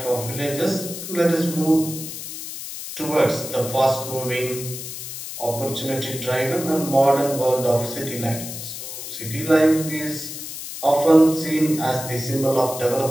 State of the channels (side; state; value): left; noise; hiss, 9 dB below the sound